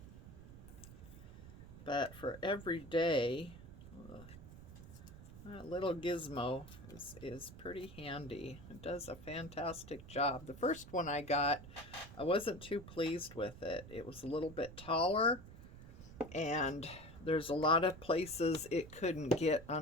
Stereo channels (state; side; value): noise; right; rumble, 15 dB below the sound